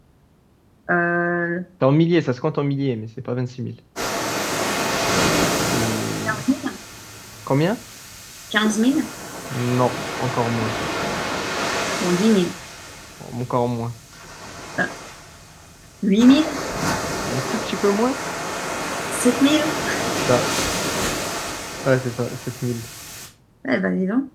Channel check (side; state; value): both; identical; correlation 1.00